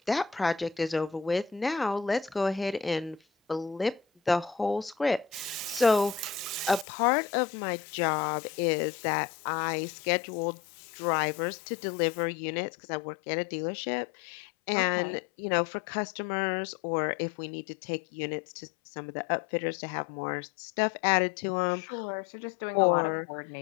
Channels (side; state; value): right; drops out; at 6.9 s